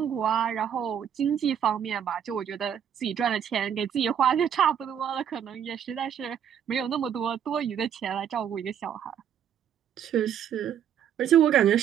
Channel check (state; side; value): quieter; left; 8.9 dB